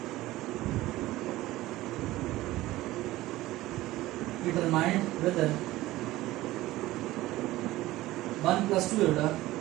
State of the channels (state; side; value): quieter; left; 17.1 dB